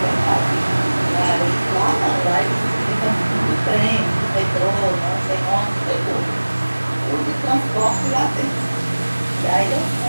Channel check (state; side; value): inverted; both; correlation -1.00